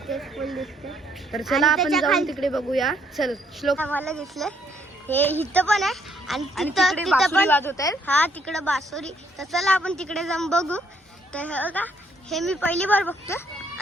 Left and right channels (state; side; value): normal; both; correlation 0.69